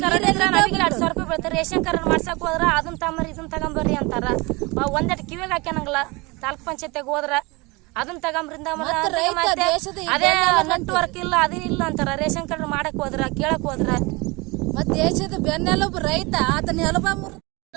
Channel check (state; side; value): quieter; left; 25.3 dB